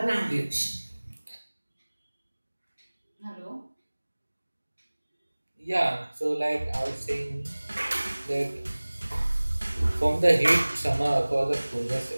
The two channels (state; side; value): inverted; both; correlation -1.00